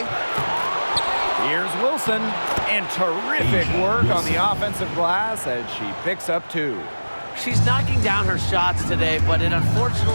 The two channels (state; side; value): inverted; both; correlation -1.00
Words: Here's Wilson. And terrific work on the offensive glass as she picks up 2. She's knocking down her shots today, but it